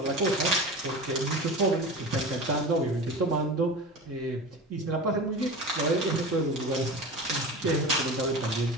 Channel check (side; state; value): both; normal; correlation 0.31